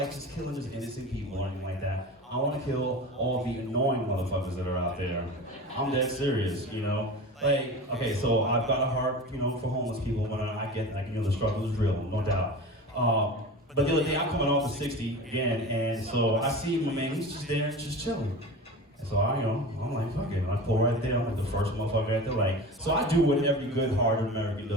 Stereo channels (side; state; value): both; normal; correlation 0.32